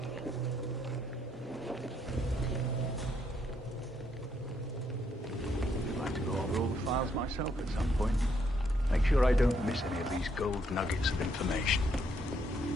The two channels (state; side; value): normal; both; correlation 0.73